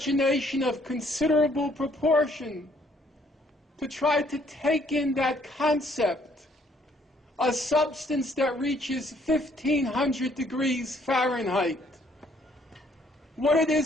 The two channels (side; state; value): both; normal; correlation 0.65